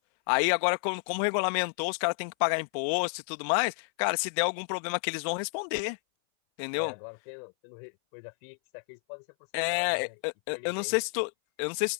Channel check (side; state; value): right; silent; 58 dB below the other